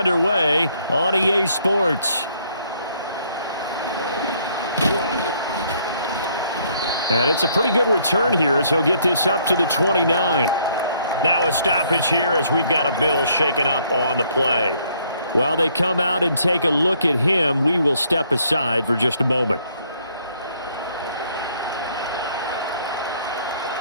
on EA Sports. And it's a pretty good return here as he'll get this up to the 29. Now a stoppage here as we've got a Bill shaken up on the play. While they come out and take a look at him, we will step aside for just a moment.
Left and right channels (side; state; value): both; inverted; correlation -0.66